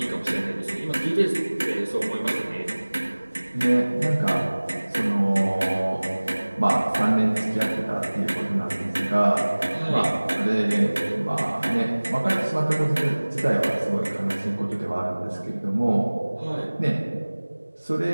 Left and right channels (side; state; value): both; inverted; correlation -1.00